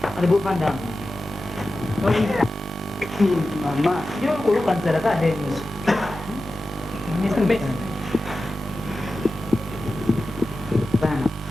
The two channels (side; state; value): both; normal; correlation 0.93